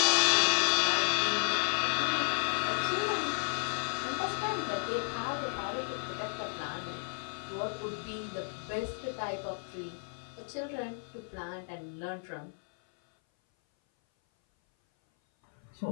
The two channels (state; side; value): silent; right; 56 dB below the other